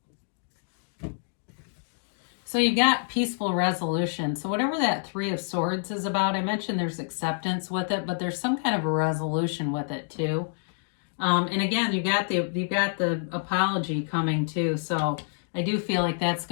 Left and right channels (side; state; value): right; silent; digital silence